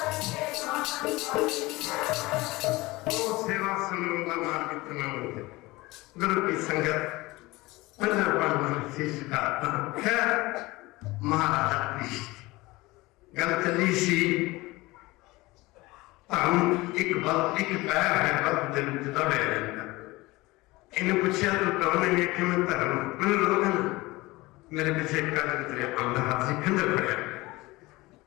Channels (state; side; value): quieter; right; 21.1 dB